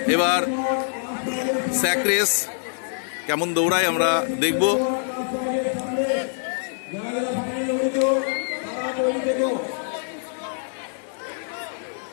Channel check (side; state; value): right; silent; digital silence